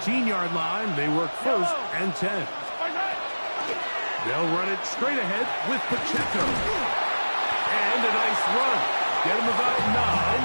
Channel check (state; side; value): inverted; both; correlation -1.00